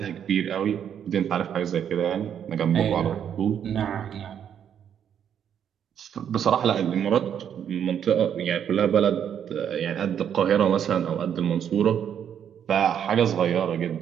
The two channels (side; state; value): left; quieter; 8.8 dB